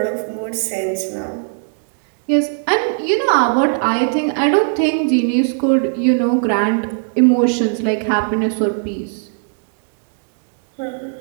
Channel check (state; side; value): silent; left; 63 dB below the other